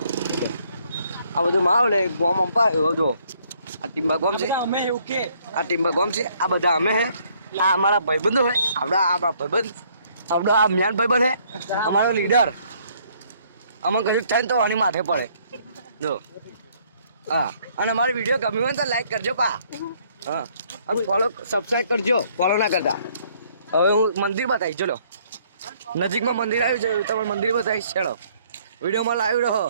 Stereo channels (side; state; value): both; inverted; correlation -0.65